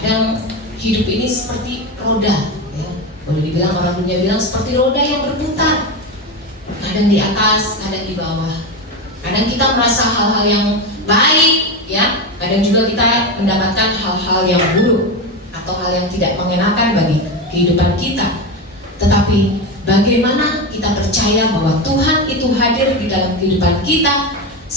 hidup ini seperti roda, ya. Boleh dibilang, orang dunia bilang seperti roda yang berputar. Kadang di atas, kadang di bawah. Kadang kita merasa hal-hal yang baik, ya. Kadang juga kita mendapatkan hal-hal yang buruk atau hal yang tidak mengenakan bagi kehidupan kita. Tetapi bagaimana kita percaya bahwa Tuhan itu hadir di dalam kehidupan kita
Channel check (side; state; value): both; normal; correlation 0.17